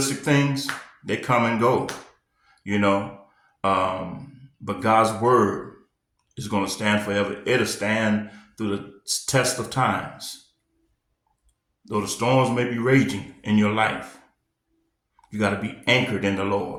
things, they come and go, but God's word is going to stand forever. It'll stand through the test of times. Though the storms may be raging in your life, you got to be anchored in the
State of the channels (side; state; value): both; identical; correlation 1.00